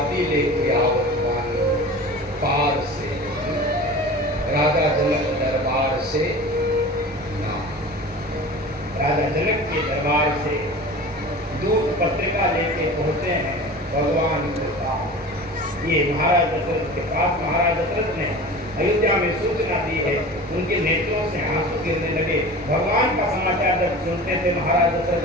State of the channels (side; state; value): both; normal; correlation 0.36